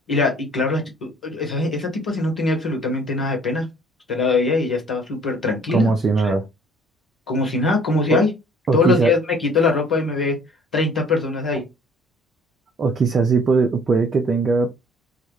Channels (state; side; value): normal; both; correlation 0.56